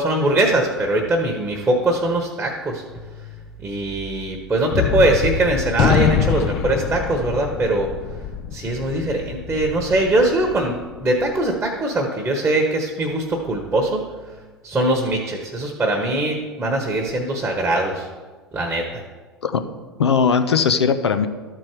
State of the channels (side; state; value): both; normal; correlation 0.36